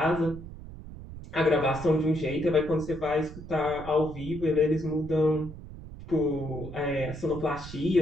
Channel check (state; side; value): noise; right; rumble, 13 dB below the sound